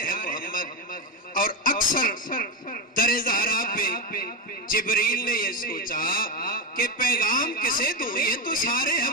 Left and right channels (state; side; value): normal; both; correlation 0.13